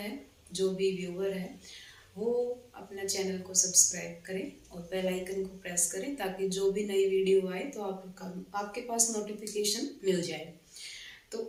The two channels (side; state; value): both; identical; correlation 1.00